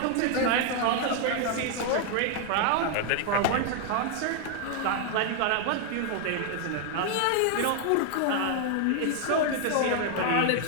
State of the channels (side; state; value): both; different; correlation 0.00